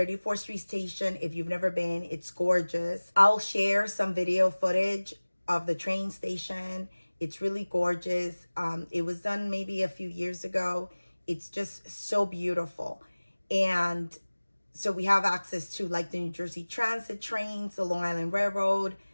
Street station, if you've never been, it's gorgeous. I'll share some video footage of the train station. It's really gorgeous. It was done maybe a few years ago. It's just so beautiful. And so we have access to like the New Jersey Transit trains, the Long Island Railroad,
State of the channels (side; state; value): both; inverted; correlation -1.00